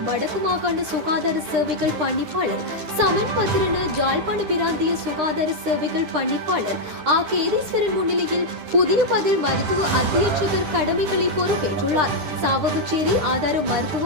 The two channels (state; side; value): late; left; 9.9 ms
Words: வடக்கு மாகாண சுகாதார சேவைகள் பணிப்பாளர் சமன் பத்திரன, ஜாழ்ப்பாண பிராந்திய சுகாதார சேவைகள் பணிப்பாளர் ஆ. கேதீஸ்வரன் முன்னிலையில் புதிய பதில் மருத்துவ அத்தியட்சகர் கடமைகளை பொறுப்பேற்றுள்ளார். சாவகச்சேரி ஆதார